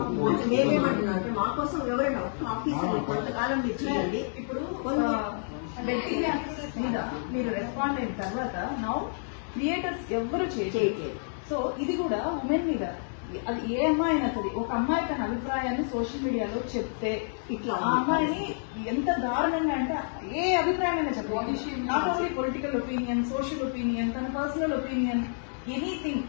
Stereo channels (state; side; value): silent; right; 59 dB below the other